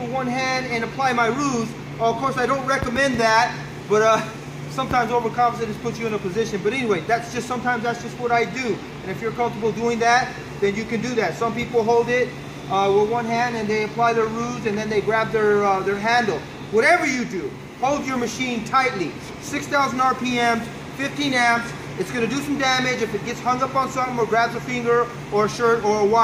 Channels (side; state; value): both; identical; correlation 1.00